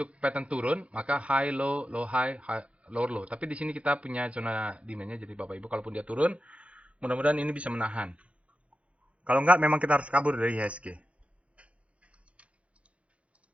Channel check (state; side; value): late; left; 0.063 ms